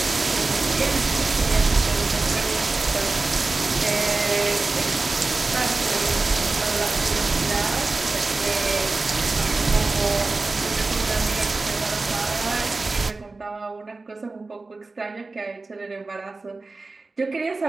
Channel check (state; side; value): quieter; left; 3.6 dB